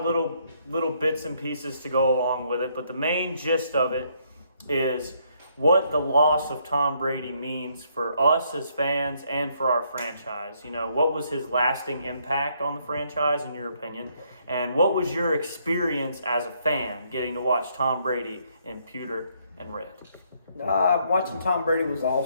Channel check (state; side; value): inverted; both; correlation -0.70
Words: little bits and pieces to go along with it, but the main gist of it is what the loss of Tom Brady means for us as fans and for our franchise. What was his lasting impact on the franchise, in your opinion? And what was your experience as a fan getting to watch Tom Brady in pewter and red? Watching Tom Brady was